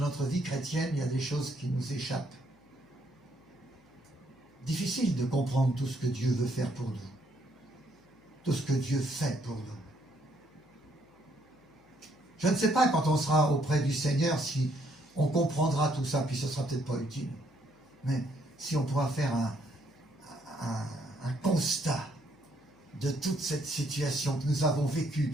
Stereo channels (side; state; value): left; noise; hum, 29 dB below the sound